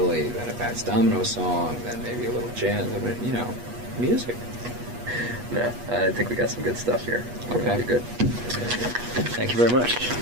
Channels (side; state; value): left; late; 8.3 ms